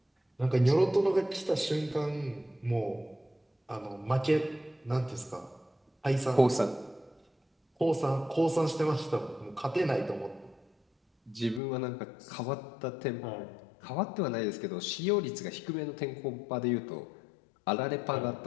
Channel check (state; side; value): drops out; right; at 11.6 s